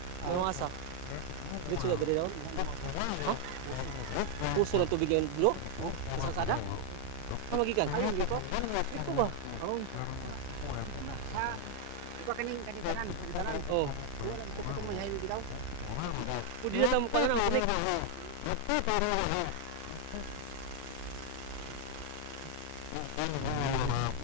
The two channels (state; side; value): different; both; correlation 0.00